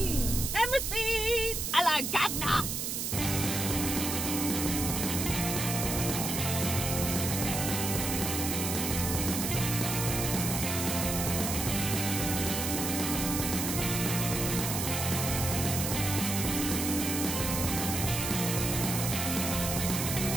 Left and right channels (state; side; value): noise; right; hiss, 2 dB below the sound